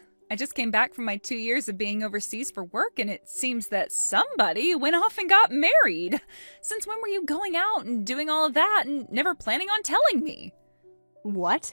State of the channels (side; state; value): both; inverted; correlation -1.00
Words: I just came back from my 2 years of being overseas for work, and it seems that somebody went off and got married. Since when were you going out and doing all of that and never planning on telling me?